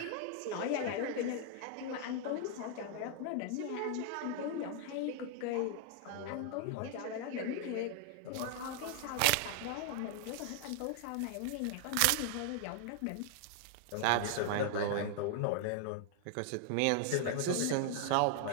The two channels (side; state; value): both; different; correlation 0.00